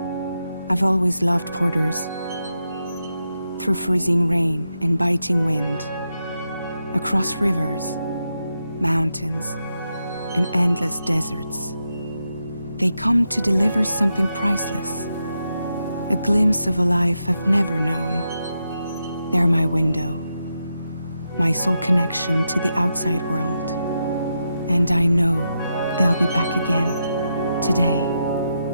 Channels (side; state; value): both; inverted; correlation -0.85